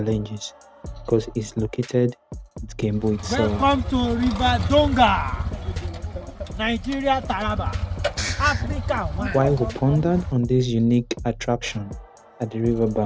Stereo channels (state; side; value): identical; both; correlation 1.00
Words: because it's located at Gembo itself. Welcome to River Donga, Nigeria, Taraba, Africa. While we pondered on this unique attraction at the